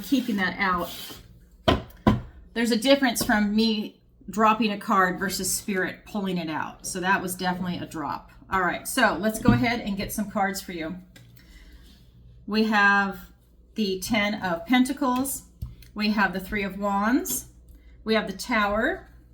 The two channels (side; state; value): both; identical; correlation 1.00